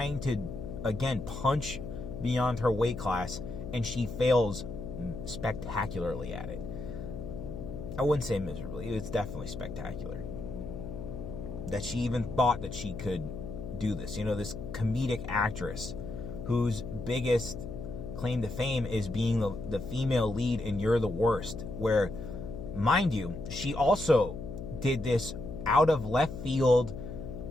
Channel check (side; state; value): left; noise; hum, 8 dB below the sound